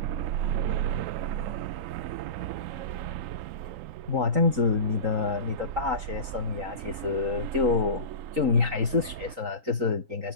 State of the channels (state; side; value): late; left; 3.8 ms